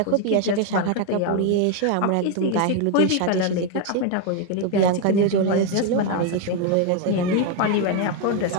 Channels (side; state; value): both; different; correlation 0.01